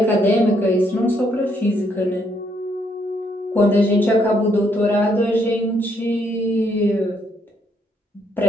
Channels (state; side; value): normal; both; correlation 0.72